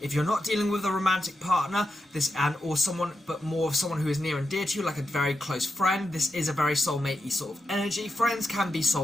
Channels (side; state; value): both; normal; correlation 0.88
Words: If you're not dealing with a romantic partner, or someone, but more of someone who is near and dear to you, like a very close friend, this is a very soulmate-y sort of energy. Friends can be